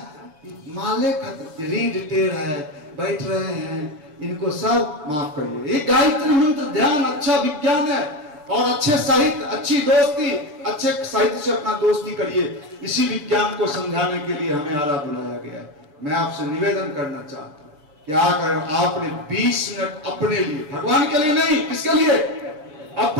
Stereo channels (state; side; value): late; left; 6.7 ms